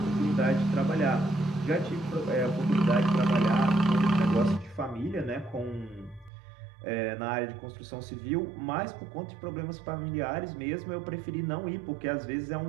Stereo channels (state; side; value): drops out; left; at 6.3 s